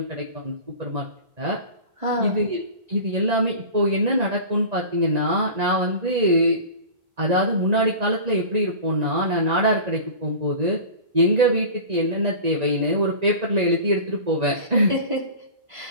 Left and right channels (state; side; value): late; left; 1.9 ms